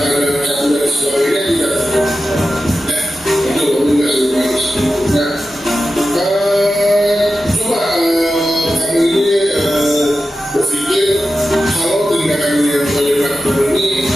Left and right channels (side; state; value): both; normal; correlation 0.92